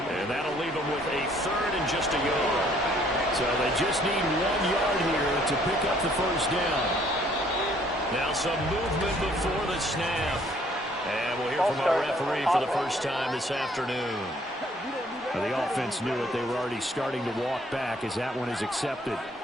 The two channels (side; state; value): both; normal; correlation 0.62